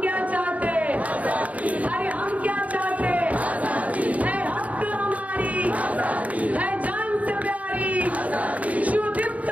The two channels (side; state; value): left; late; 0.070 ms